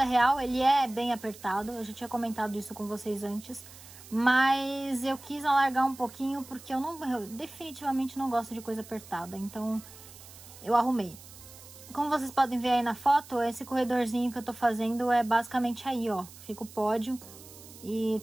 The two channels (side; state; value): right; noise; hiss, 18 dB below the sound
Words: real ele é bem apertado, eu já tinha comentado isso com vocês antes. Mas eu quis alargar um pouquinho, porque eu definitivamente não gosto de coisa apertada, então eu arrumei. Como vocês podem ver aí na foto, esse corredorzinho que eu tô fazendo é basicamente aí, ó. Fica o pódio e